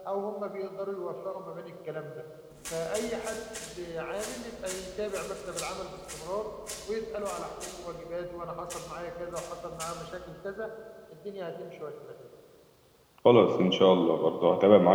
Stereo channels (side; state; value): both; identical; correlation 1.00